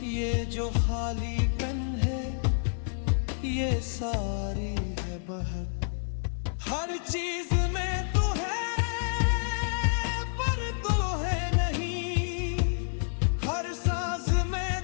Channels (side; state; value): right; silent; digital silence